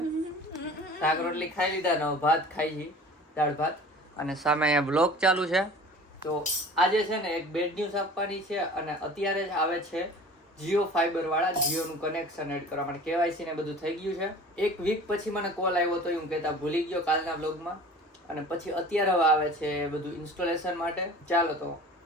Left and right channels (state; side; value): normal; both; correlation 0.43